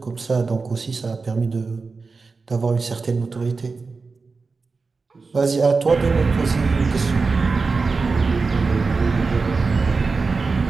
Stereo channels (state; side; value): quieter; left; 4.3 dB